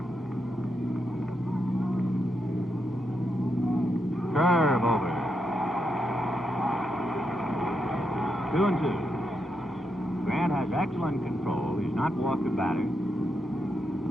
Curve over. 2-2. Grant has excellent control. He's not walked a batter.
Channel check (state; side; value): normal; both; correlation 0.83